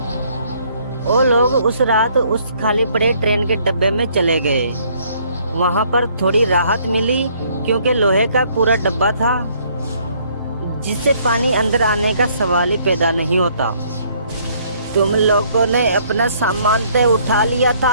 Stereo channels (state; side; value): inverted; both; correlation -0.64